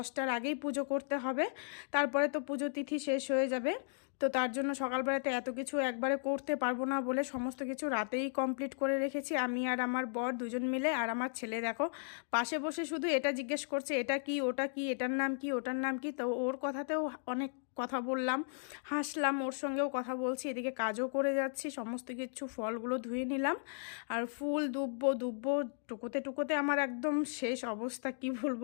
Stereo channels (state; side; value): silent; right; digital silence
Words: আগেই পুজো করতে হবে। তারপরে তো পুজো তিথি শেষ হয়ে যাবে। তো তার জন্য সকালবেলাতে এত কিছু একবারে করতে পারবো না বলে সমস্ত কিছু রাতেই কমপ্লিট করে রেখেছি, আমি আর আমার বর দুজন মিলে। আর আমার ছেলে দেখো পাশে বসে শুধু এটা জিজ্ঞেস করছে, এটা কি, ওটা কি, এটার নাম কি, ওটার নাম কি। তো ওর কথাতেও অনেক কথা বললাম, হাসলাম, ওর সঙ্গেও কথা বলছি, এদিকে কাজও করে যাচ্ছি। সমস্ত কিছু ফলগুলো ধুয়ে নিলাম। আর ফুল দুব্বো টুকোতে টুকোতে আমার একদম শেষ অবস্থা, কি